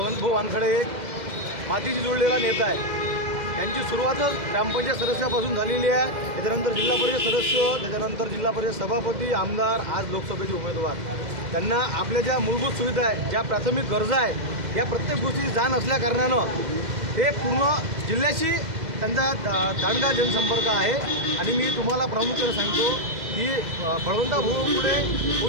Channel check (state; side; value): late; left; 2.0 ms